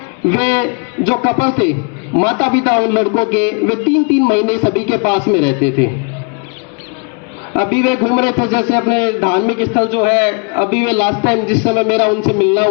वे जो कपल थे, माता पिता उन लड़कों के, वे 3-3 महीने सभी के पास में रहते थे। अभी वे घूम रहे थे जैसे अपने धार्मिक स्थल जो है, अभी वे लास्ट टाइम जिस समय मेरा उनसे मिलना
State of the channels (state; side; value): quieter; right; 36.0 dB